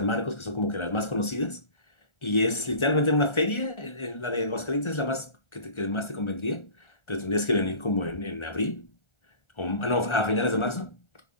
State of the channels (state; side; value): late; right; 1.4 ms